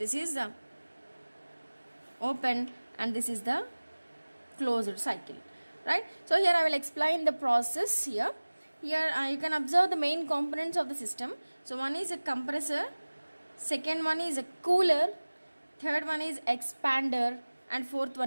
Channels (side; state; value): both; inverted; correlation -1.00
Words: this is the open and this is the closed cycle, right? So here I will explain the process here. Here you can observe the main components of the system. So one is a compressor, second one is a cooler, third one is expander, and fourth